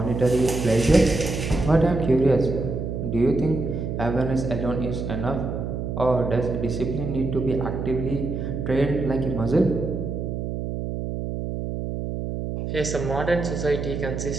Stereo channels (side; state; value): right; noise; hum, 4 dB below the sound